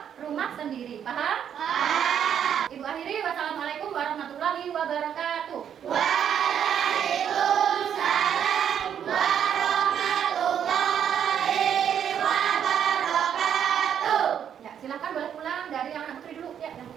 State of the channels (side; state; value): left; quieter; 8.8 dB